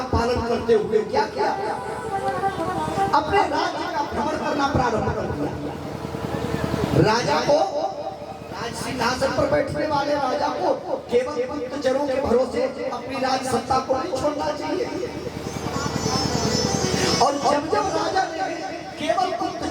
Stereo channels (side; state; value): both; identical; correlation 1.00